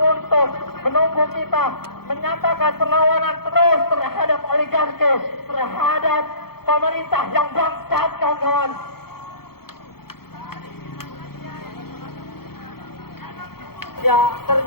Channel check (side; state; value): right; late; 0.95 ms